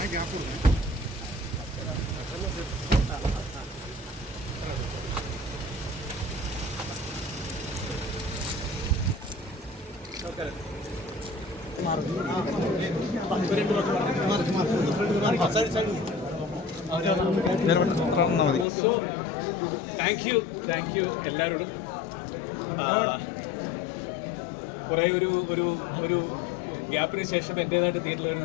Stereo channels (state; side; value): drops out; right; at 18.7 s